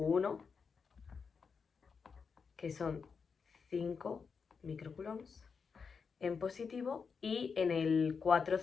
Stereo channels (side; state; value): right; quieter; 5.6 dB